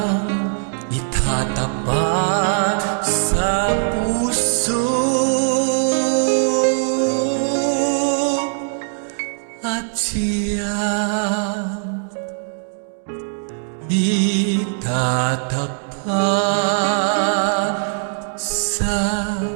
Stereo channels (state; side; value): silent; left; 65 dB below the other